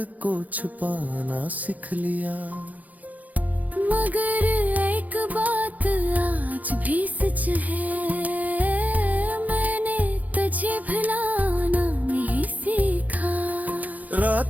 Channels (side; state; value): left; late; 0.078 ms